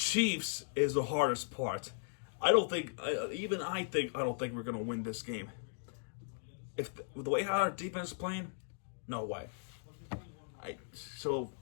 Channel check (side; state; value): right; silent; digital silence